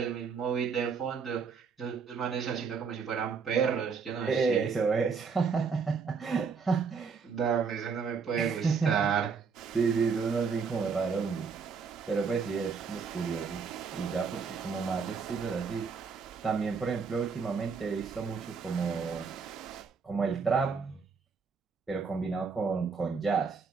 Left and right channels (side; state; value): left; quieter; 5.5 dB